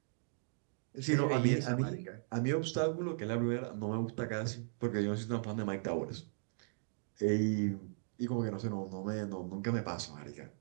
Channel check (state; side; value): silent; left; digital silence